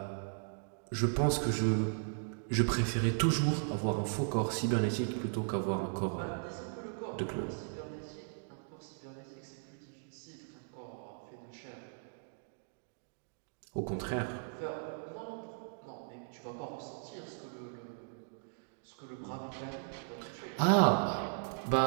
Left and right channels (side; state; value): left; silent; digital silence